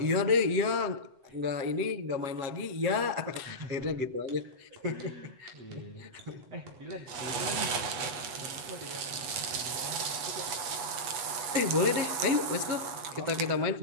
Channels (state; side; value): late; left; 8.2 ms